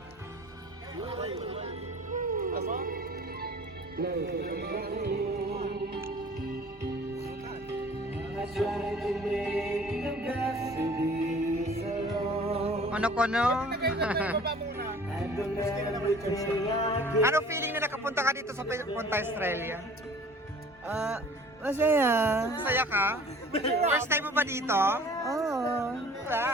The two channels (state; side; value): normal; both; correlation 0.49